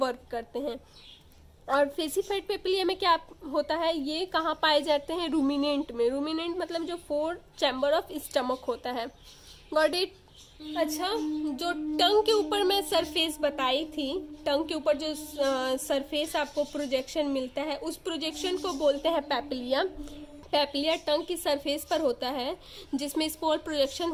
करते हैं. और फेसिफाइड पैपिलिया में क्या होता है? ये कहाँ पाए जाते हैं? रूमिनेंट में. रूमिनेंट मतलब जो 4 चैम्बर ऑफ स्टमक होता है. Got it. अच्छा, जो टंग के ऊपर मैं सरफेस बताई थी, टंग के ऊपर जो सरफेस आपको प्रोजेक्शन मिलता है उस प्रोजेक्शन को बोलते हैं पैपिलिया. पेपिलिया टंग की सरफेस पर होता है, जिसमें स्पोर प्रोजेक्शन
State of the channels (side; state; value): both; identical; correlation 1.00